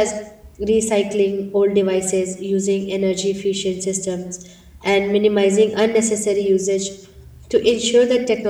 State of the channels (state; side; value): identical; both; correlation 1.00